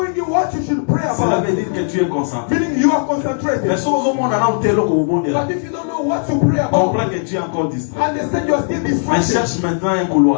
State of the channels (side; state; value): right; silent; 63 dB below the other